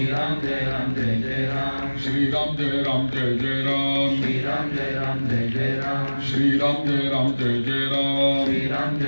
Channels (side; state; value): both; inverted; correlation -1.00